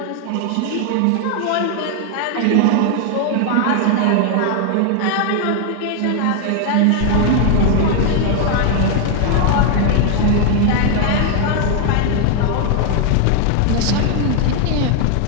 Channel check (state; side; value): different; both; correlation 0.00